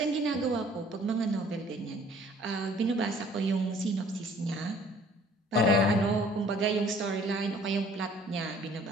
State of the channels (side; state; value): both; normal; correlation 0.55